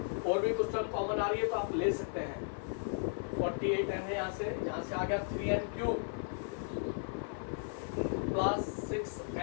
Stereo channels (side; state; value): right; silent; 54 dB below the other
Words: और भी कुछ टर्म कॉमन आ रही है तो आप ले सकते हैं। 48n है, यहाँ से आ गया 3n cube plus